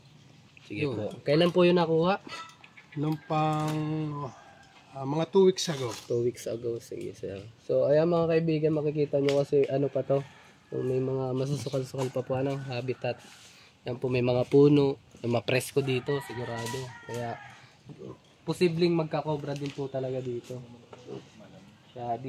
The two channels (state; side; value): identical; both; correlation 1.00